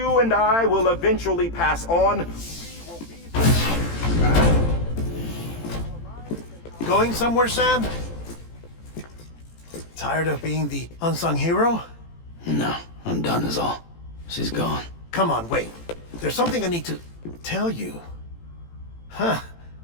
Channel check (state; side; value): late; right; 18 ms